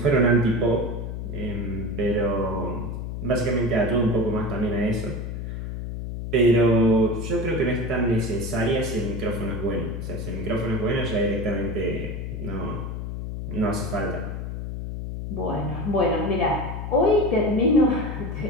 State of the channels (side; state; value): left; noise; hum, 6 dB below the sound